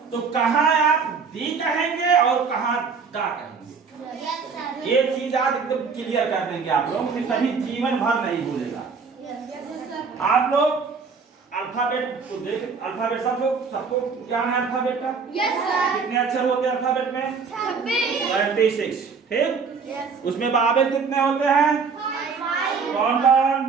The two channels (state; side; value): quieter; left; 5.4 dB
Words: तो कहाँ आप दी कहेंगे और कहाँ दा कहेंगे। ये चीज आज एकदम क्लियर कर देंगे आप लोग, कभी जीवन भर नहीं भूलेगा। आप लोग अल्फाबेट तो देख, अल्फाबेट सबको ज्ञान है अल्फाबेट का। कितने अक्षर होते हैं अल्फाबेट में? 26। ठीक, उसमें बाबेल कितने होते हैं? कौन कौन?